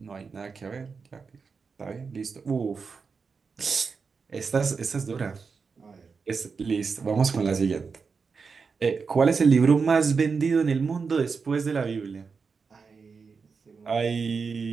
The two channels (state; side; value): quieter; left; 5.2 dB